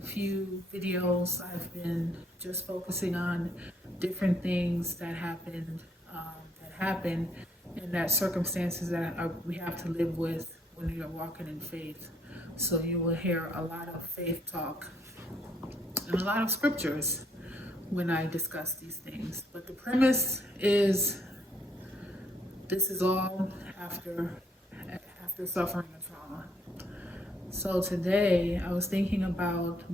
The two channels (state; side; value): normal; both; correlation 0.70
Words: few videos, I've been just focusing on different things that happen, and that circumstances we have to live with when you're walking in faith. So you will hear a lot of faith talk and a lot of scriptures when I discuss these things. But the premise is this is all after suffering a trauma. So today I was thinking about